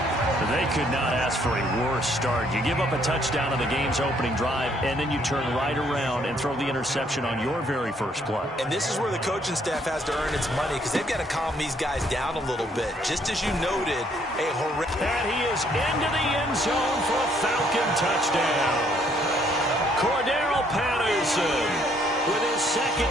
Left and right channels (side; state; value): both; normal; correlation 0.67